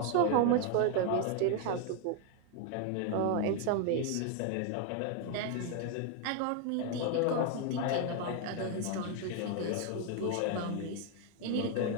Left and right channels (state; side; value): different; both; correlation 0.01